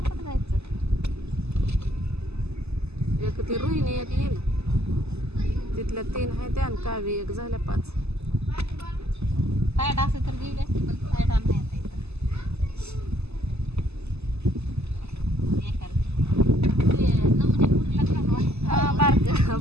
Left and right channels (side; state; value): left; late; 0.80 ms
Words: पण जायचं. एक ती रोहिणी एक येईल तिथल्या 3 आहे त्या आणि कावी एक झाल्या 5. साईड असेल तर गेली असते पण साईड नाही आता इथं. नमुने पुरीला घालवा.